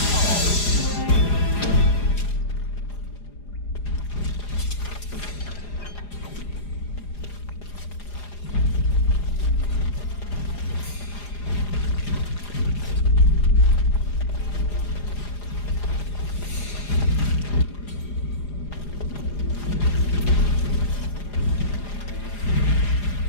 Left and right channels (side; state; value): right; late; 4.9 ms